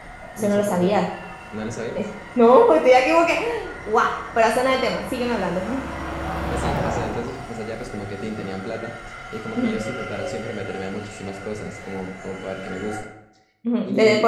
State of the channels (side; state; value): both; identical; correlation 1.00